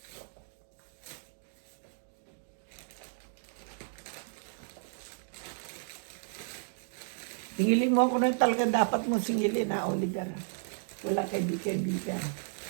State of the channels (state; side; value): silent; left; digital silence